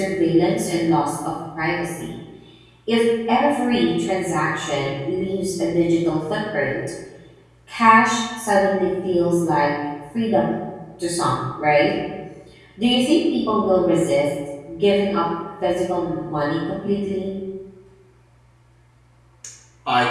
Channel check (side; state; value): both; identical; correlation 1.00